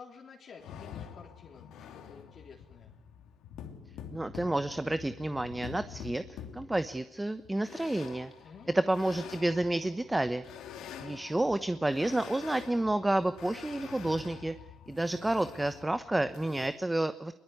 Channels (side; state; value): both; normal; correlation 0.97